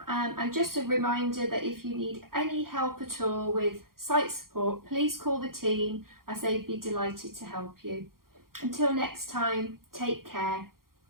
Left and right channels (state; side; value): late; left; 0.92 ms